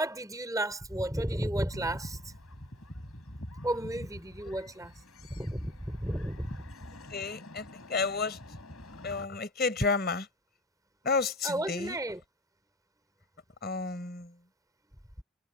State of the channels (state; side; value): normal; both; correlation 0.39